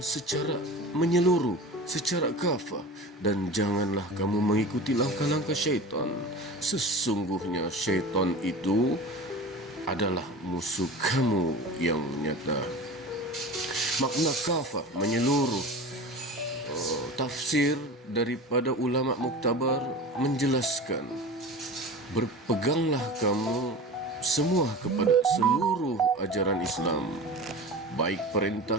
secara menyeluruh, secara kafah, dan janganlah kamu mengikuti langkah-langkah syaitan. Sesungguhnya syaitan itu adalah musuh kamu yang nyata. Makna kafah menyeluruh. Tafsir daripada ulama muktabar menjelaskan, berpeganglah kamu semua kepada seluruh ajaran Islam, baik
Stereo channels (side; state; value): both; normal; correlation 0.34